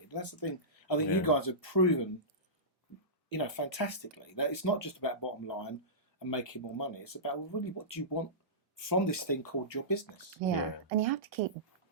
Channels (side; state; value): both; normal; correlation -0.19